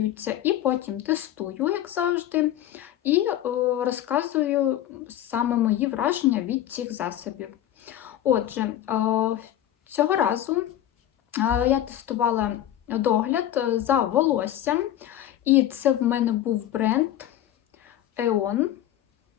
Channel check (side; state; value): right; quieter; 12.1 dB